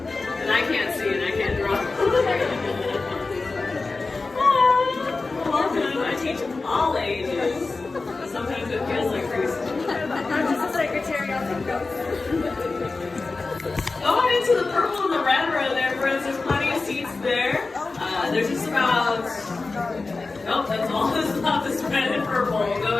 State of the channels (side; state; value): right; quieter; 3.7 dB